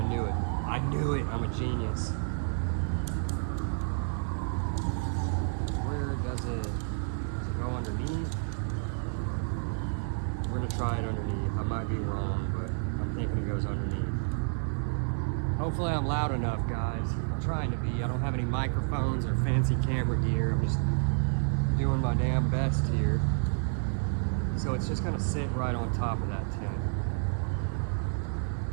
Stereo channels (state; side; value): silent; left; 58 dB below the other